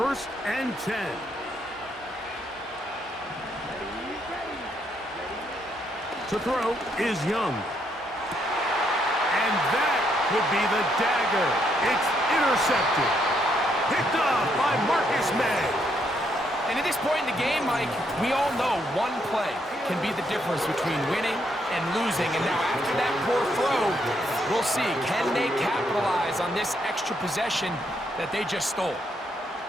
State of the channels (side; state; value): both; normal; correlation 0.75